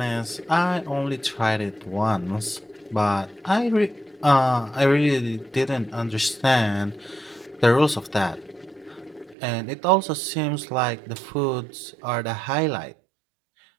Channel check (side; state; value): left; drops out; at 9.3 s